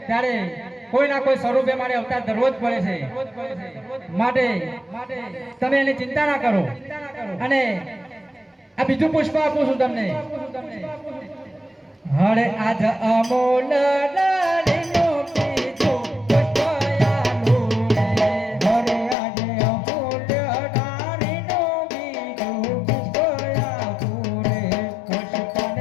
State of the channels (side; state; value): right; drops out; at 19.2 s